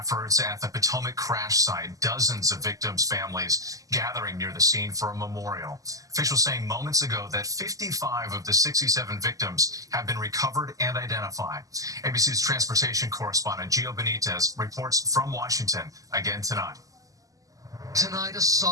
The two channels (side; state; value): left; late; 0.17 ms